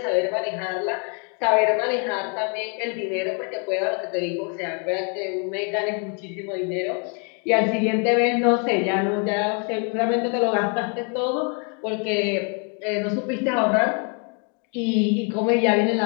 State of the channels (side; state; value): right; quieter; 37.6 dB